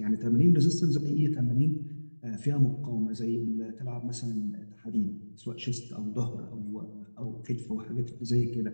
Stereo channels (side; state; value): both; inverted; correlation -1.00